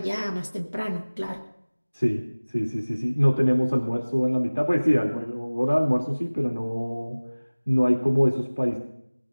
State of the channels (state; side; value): inverted; both; correlation -1.00